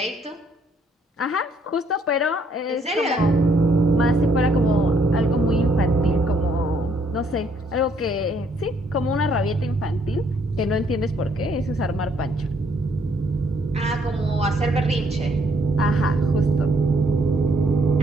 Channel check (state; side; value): normal; both; correlation 0.68